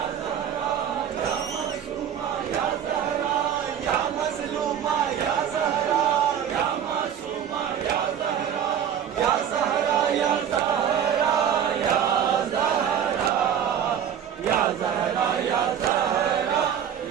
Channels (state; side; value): quieter; left; 9.0 dB